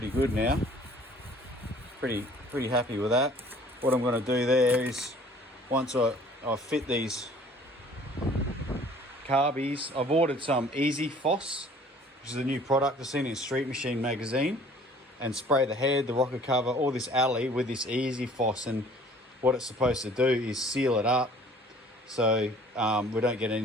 good now. Pretty happy with that. What I'm going to do there is, once I fit these carbies, I've ordered some Easy Foss, which is a new product I've seen in Street Machine magazine, and spray the head, the rocker cover, all this alley with this Easy Foss. And what it's supposed to do is seal it up so we don't get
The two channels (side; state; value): both; normal; correlation 0.53